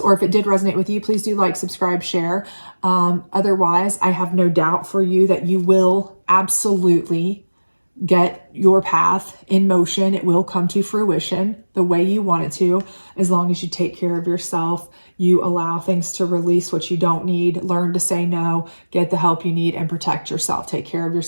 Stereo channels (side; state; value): both; inverted; correlation -1.00